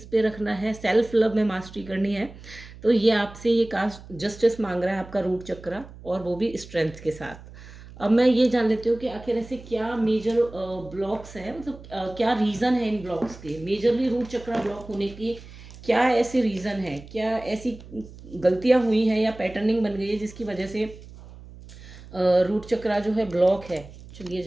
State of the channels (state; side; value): noise; right; hum, 18 dB below the sound